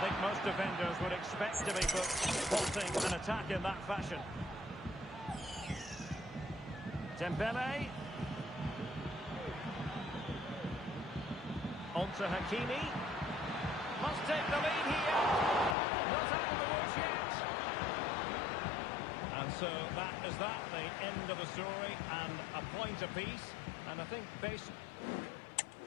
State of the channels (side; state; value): right; drops out; at 15.8 s